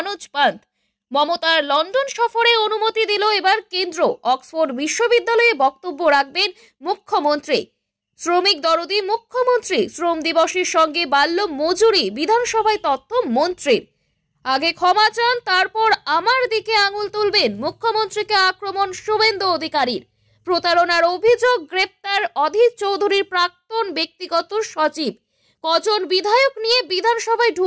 পান্ত। মমতার লন্ডন সফরে অনুমতি দিল এবার কেন্দ্র। অক্সফোর্ড বিশ্ববিদ্যালয়ে বক্তব্য রাখবেন মুখ্যমন্ত্রী। শ্রমিক দরদি মুখ্যমন্ত্রী। শ্রম দিবসের সঙ্গে বাড়ল মজুরি, বিধানসভায় তথ্য মন্ত্রীর। আগে ক্ষমা চান, তারপর আমার দিকে আঙুল তুলবেন, মুখ্যমন্ত্রীকে আক্রমণ শুভেন্দু অধিকারীর। প্রতারণার অভিযোগ, গ্রেপ্তার অধীর চৌধুরীর প্রাক্তন ব্যক্তিগত সচিব। কজন বিধায়ক নিয়ে বিধানসভায়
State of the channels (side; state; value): both; identical; correlation 1.00